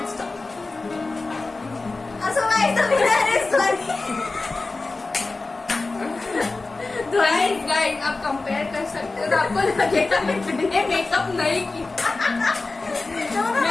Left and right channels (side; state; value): right; quieter; 3.5 dB